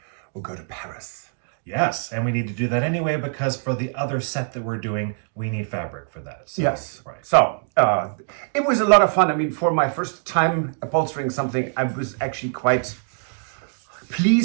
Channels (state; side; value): silent; left; 63 dB below the other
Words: go to Paris. Yes, and we need to do that anyway because for the other set that we're doing, we need fabric for that. So, Yes. right. So it was a lot of fun. I mean, for my first time upholstering something, I was actually quite